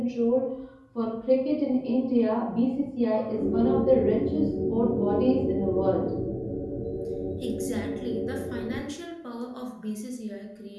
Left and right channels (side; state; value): both; identical; correlation 1.00